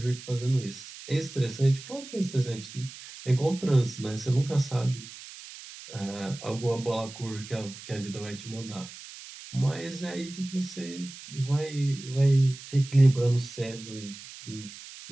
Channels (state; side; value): noise; right; hiss, 15 dB below the sound